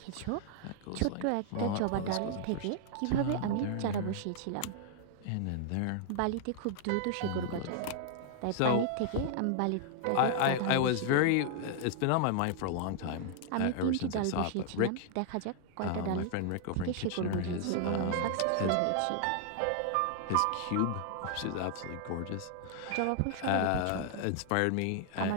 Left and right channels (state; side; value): different; both; correlation -0.01